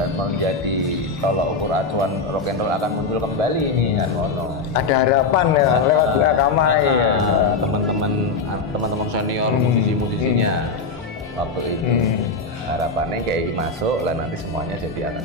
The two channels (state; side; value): quieter; right; 4.0 dB